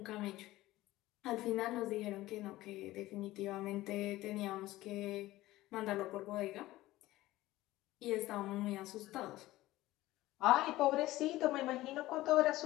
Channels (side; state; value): right; quieter; 17.0 dB